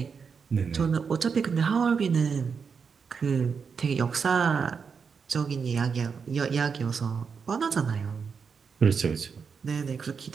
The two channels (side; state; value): left; quieter; 5.9 dB